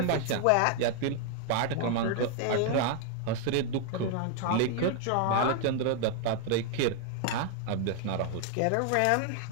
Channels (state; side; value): different; both; correlation 0.00